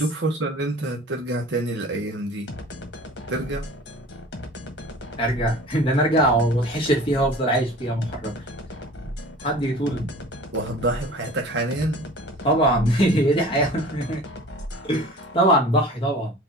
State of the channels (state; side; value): normal; both; correlation 0.42